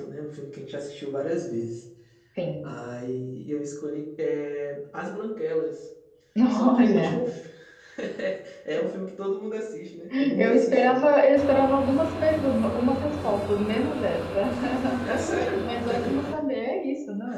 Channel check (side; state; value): both; identical; correlation 1.00